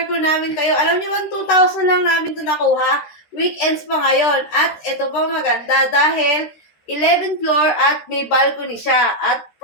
ko namin kayo. Alam niyo ba, 2,000 lang namin ito nakuha. Weekends pa ngayon. At ito pa maganda dahil 11th floor at may balcony siya. At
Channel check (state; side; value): late; right; 13 ms